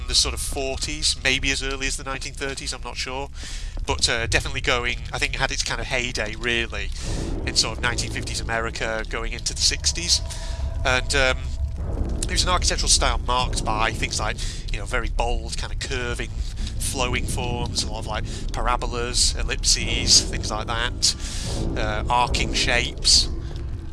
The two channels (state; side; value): identical; both; correlation 1.00